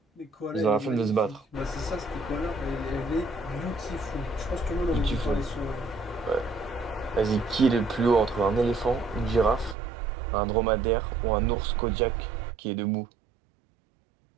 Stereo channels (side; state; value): left; drops out; at 9.8 s